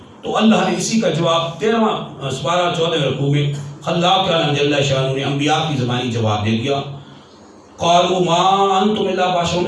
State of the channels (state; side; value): identical; both; correlation 1.00